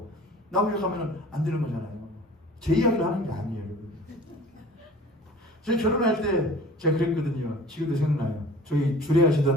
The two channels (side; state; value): both; normal; correlation 0.45